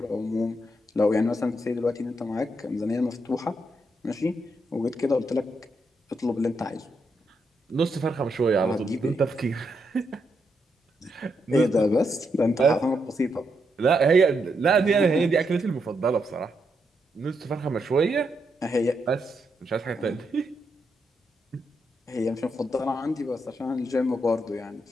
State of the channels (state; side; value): normal; both; correlation 0.80